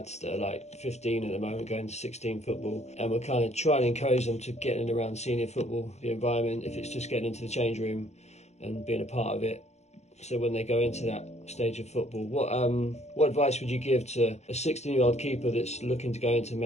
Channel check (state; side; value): late; right; 0.32 ms